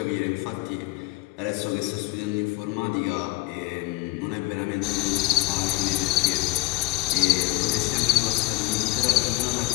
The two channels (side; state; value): right; quieter; 22.1 dB